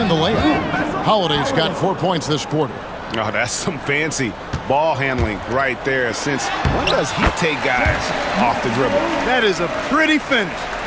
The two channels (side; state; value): both; identical; correlation 1.00